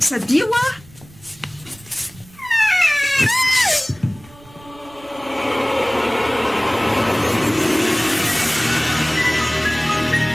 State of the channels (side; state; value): right; noise; rumble, 24 dB below the sound